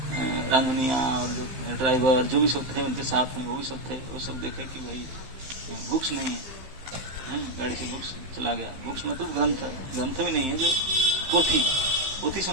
रांधनिया और जो ड्राइवर जो भी सब थे उनके साथ में, वो भी सब थे। वो सब देखे कि भाई बुक्स नहीं है, गाड़ी से बुक्स चला गया। बुक्स मतलब ग्रंथ भी नहीं है, जो पोथी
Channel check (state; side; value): late; left; 15 ms